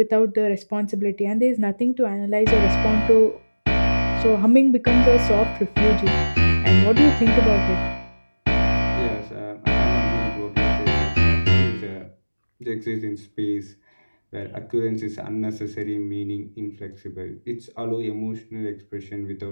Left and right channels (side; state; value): both; inverted; correlation -1.00